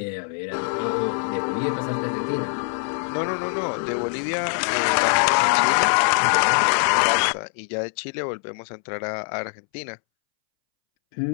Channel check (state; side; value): silent; right; 63 dB below the other